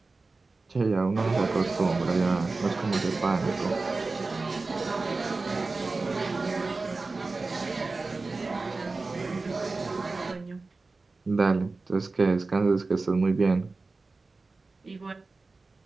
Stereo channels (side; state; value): left; quieter; 3.7 dB